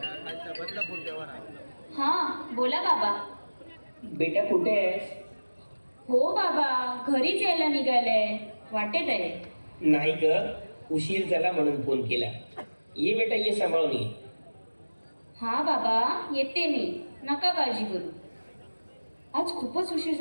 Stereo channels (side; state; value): both; inverted; correlation -1.00